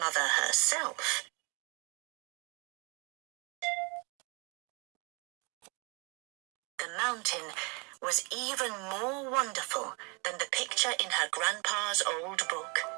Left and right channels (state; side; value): quieter; left; 31.7 dB